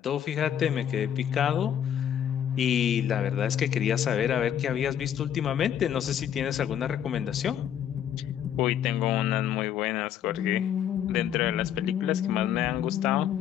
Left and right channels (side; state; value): right; quieter; 9.7 dB